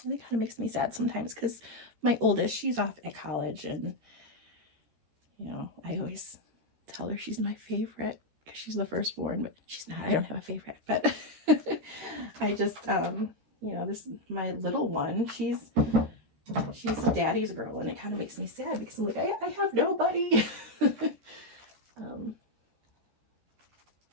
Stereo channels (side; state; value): left; late; 13 ms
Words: and it kind of makes me sad sometimes, because my oldest, she's off at college, and you know, I always tell her she's my favorite because she's the firstborn, but she's not. I don't have a favorite, but I just, you know, my little one, she's a daddy's girl, and it kind of makes me sad because I'm like, I have nobody.